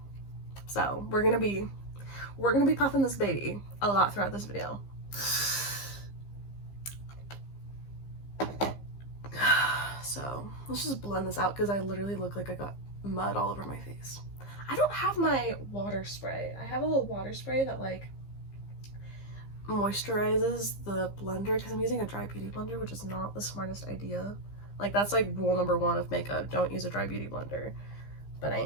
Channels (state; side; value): late; right; 15 ms